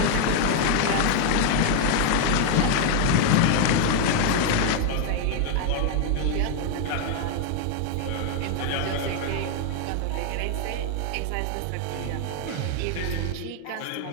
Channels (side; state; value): both; different; correlation 0.01